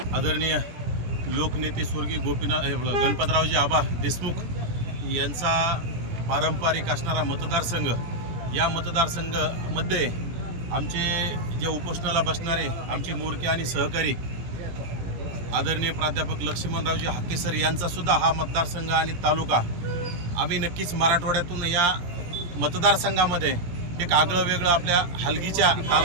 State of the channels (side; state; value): left; late; 17 ms